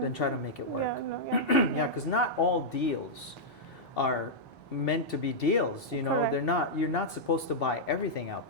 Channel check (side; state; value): both; normal; correlation -0.08